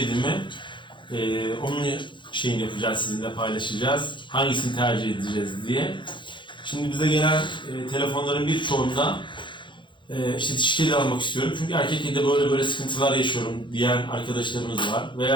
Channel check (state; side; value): late; right; 0.23 ms